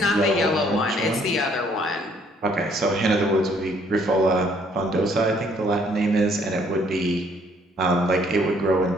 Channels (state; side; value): normal; both; correlation 0.64